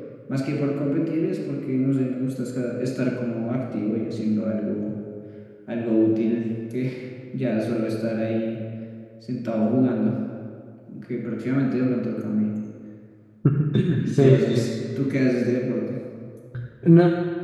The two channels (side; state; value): both; identical; correlation 1.00